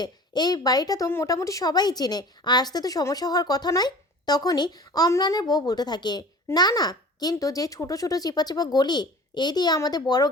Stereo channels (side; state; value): both; normal; correlation 0.41